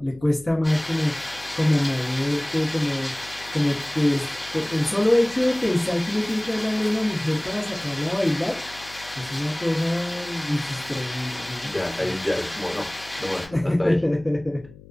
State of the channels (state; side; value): noise; left; hum, 21 dB below the sound